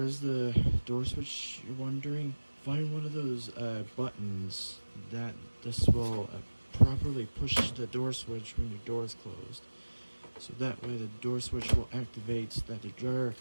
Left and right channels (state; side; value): inverted; both; correlation -1.00